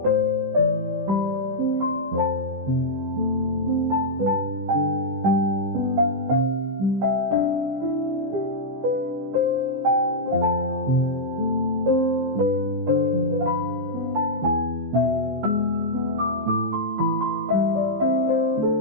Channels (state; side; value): late; left; 15 ms